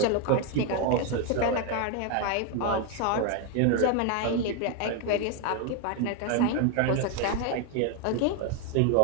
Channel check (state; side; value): different; both; correlation 0.01